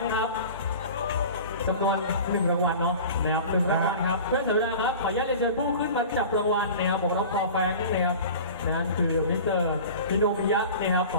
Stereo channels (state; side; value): inverted; both; correlation -0.38